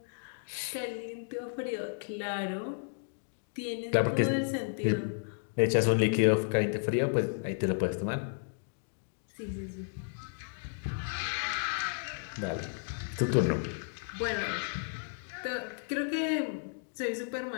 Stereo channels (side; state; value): right; silent; digital silence